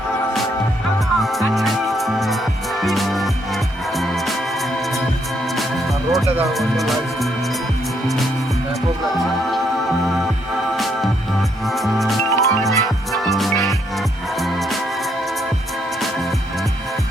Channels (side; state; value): both; normal; correlation 0.73